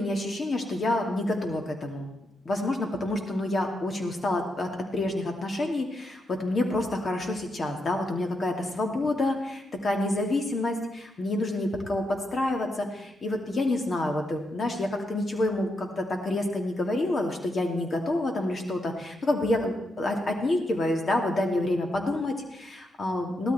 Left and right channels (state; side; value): normal; both; correlation 0.82